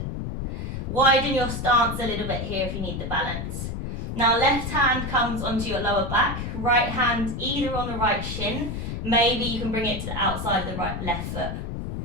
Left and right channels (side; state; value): left; noise; rumble, 5 dB below the sound